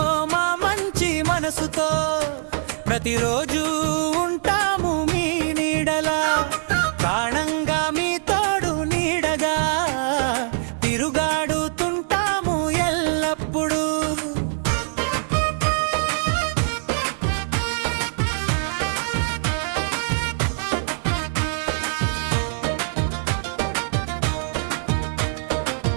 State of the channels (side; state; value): left; silent; digital silence